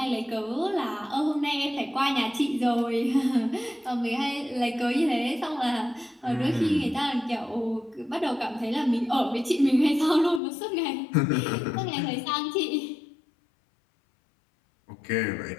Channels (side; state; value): right; drops out; at 10.4 s